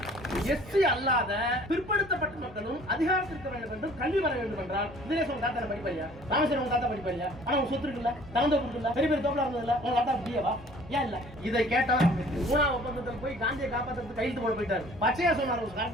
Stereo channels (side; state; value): both; normal; correlation 0.52